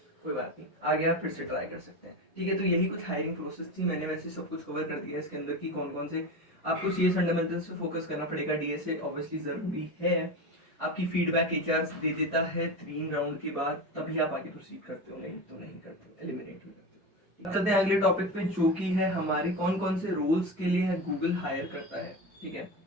कोई बात नहीं, आगे आप फिर से ट्राई कर सकते हैं। ठीक है, तो यही कुछ हायरिंग प्रोसेस थी। मैंने वैसे सब कुछ कवर कर दिया है इसके अंदर की कौन कौन से आपको सीएस फंडामेंटल्स पे फोकस करना पड़ेगा, डीएसए ऑब्वियसली ज़रूरी है। आपकी फीडबैक एचआर दे देता है 3 राउंड के बाद, तभी आप आगे प्रोसीड करते हो, नहीं तो नहीं करते हो, एलिमिनेट भी करते हो। चलते हैं अगले टॉपिक पे, जो कि है हमारे कौन कौन से रोल्स के लिए गूगल हायर करता है। ठीक है,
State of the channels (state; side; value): normal; both; correlation 0.23